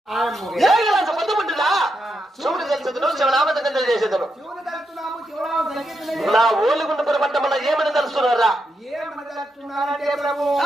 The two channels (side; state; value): both; normal; correlation 0.83